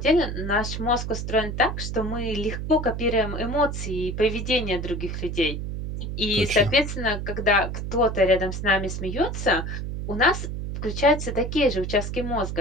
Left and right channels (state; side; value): noise; right; hum, 5 dB below the sound